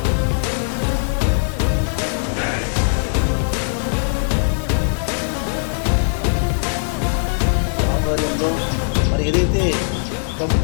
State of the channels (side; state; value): right; silent; 66 dB below the other